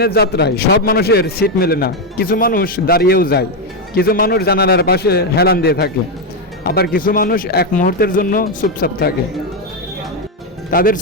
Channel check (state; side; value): normal; both; correlation 0.05